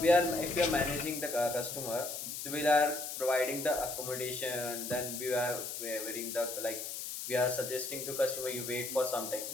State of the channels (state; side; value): noise; left; hiss, 6 dB below the sound